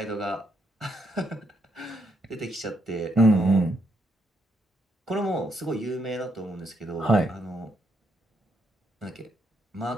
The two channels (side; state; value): both; normal; correlation 0.76